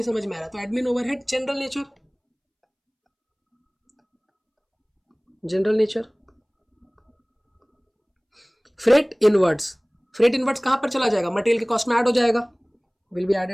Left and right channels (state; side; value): identical; both; correlation 1.00